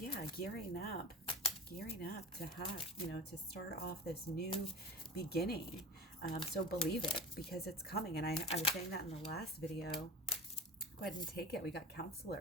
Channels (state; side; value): normal; both; correlation 0.31